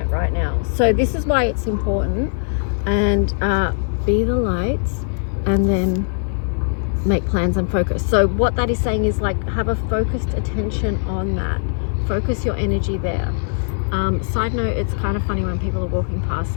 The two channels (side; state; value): right; silent; 55 dB below the other